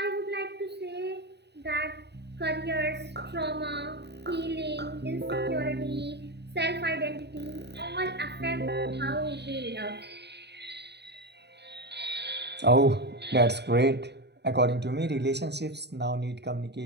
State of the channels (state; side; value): late; left; 0.49 ms